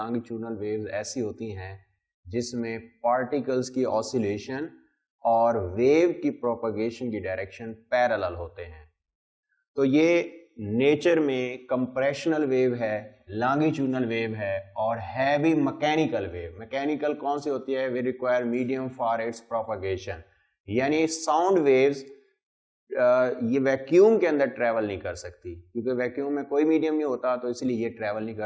वेव्स ऐसी होती हैं जिसमें पार्टिकल्स की ऑसिलेशन और वेव की प्रोपगेशन की डायरेक्शन पैरेलल होते हैं। तो ये नेचर में कंप्रेशनल वेव है, लॉन्गिट्यूडनल वेव है और है भी मैकेनिकल वेव। मैकेनिकल कौन सी होती है? We require medium for its propagation, यानी साउंड वेव्स ये वैक्यूम के अंदर ट्रेवल नहीं कर सकती, क्योंकि वैक्यूम में कोई मीडियम नहीं होता, तो इसलिए ये ट्रेवल नहीं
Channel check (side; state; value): both; identical; correlation 1.00